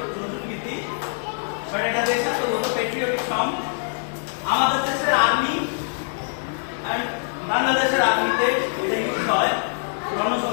আমাদের দেশের আর্মি এন্ড বাংলাদেশের আর্মিতে এটা ইউজ হয়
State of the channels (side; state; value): right; silent; digital silence